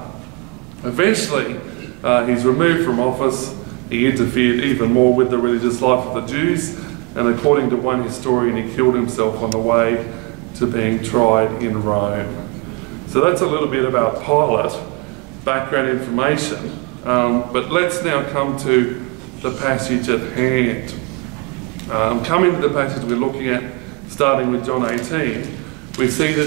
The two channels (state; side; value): quieter; left; 27.9 dB